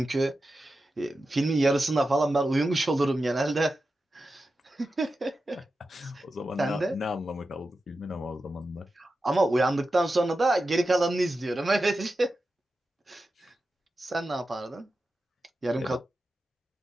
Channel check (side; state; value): both; normal; correlation 0.91